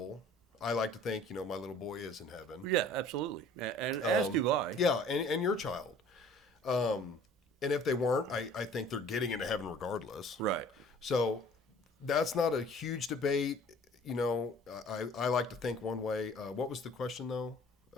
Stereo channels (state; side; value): normal; both; correlation 0.50